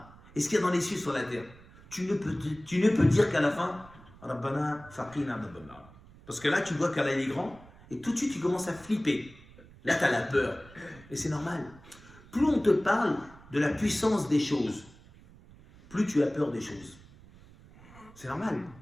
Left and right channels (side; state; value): right; noise; rumble, 22 dB below the sound